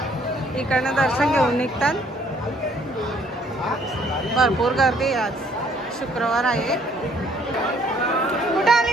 इकडनं दर्शन घेऊन निघतात. भरपूर गर्दी आज, शुक्रवार आहे. कुठे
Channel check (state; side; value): normal; both; correlation 0.63